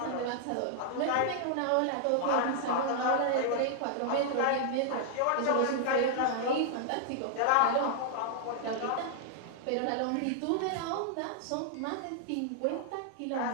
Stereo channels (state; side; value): different; both; correlation -0.01